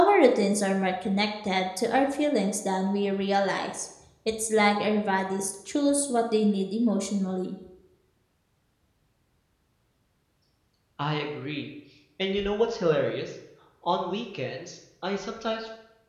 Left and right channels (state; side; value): identical; both; correlation 1.00